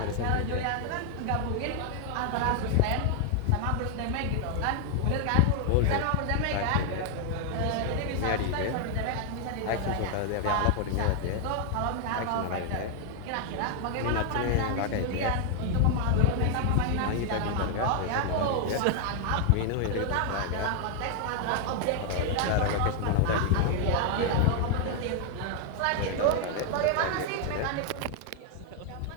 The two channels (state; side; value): different; both; correlation 0.00